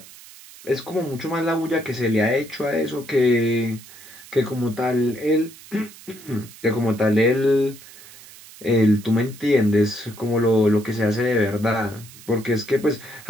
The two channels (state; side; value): noise; right; hiss, 19 dB below the sound